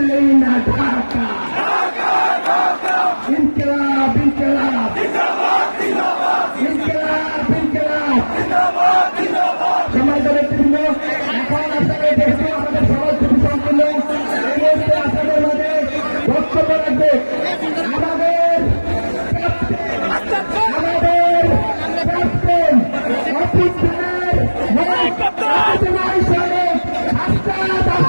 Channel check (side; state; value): both; inverted; correlation -1.00